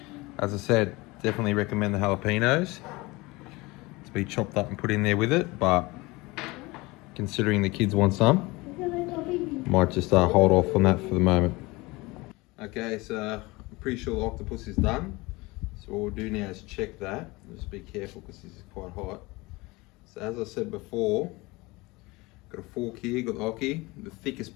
As I said, definitely recommend the jalapenos to be chopped up and put in there with it, but considering the kids want some, might just hold off on that for the moment. Okay, so I'm pretty sure the octopus is done. So what we'll do now is check that. Just be careful because this is quite hot. So as I said before, got a fork here, got the gnocchi, the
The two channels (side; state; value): right; quieter; 22.9 dB